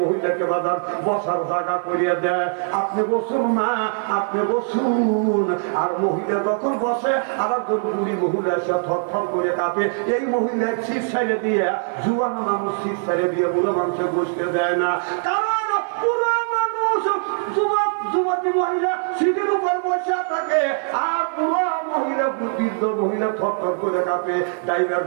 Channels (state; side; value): silent; left; 55 dB below the other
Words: মহিলাকে বাজার বসার জায়গা করিয়ে দেয়। আপনি বসুন মা, আপনি বসুন। আর মহিলা যখন বসে, আর একজন বুড়ি মহিলা এসে থরথর করে কাঁপে। এই মহিলা সিট ছেড়ে দিয়ে, যুবান মানুষ সিট ছেড়ে দিয়ে বুড়ো মানুষে বসতে দেয় না। কারণ পুরো মানুষ যুবতী মহিলা সিটের উপর বসে থাকে, আর পুরো মহিলা বৃদ্ধ মহিলা থরথর করে কাঁপে। ড্রাইভার